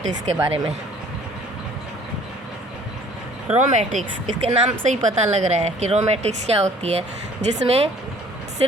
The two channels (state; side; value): normal; both; correlation 0.54